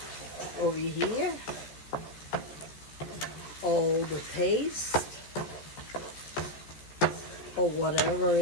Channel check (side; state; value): right; late; 13 ms